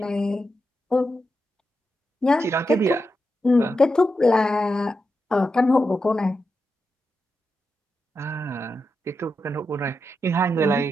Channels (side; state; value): both; normal; correlation 0.87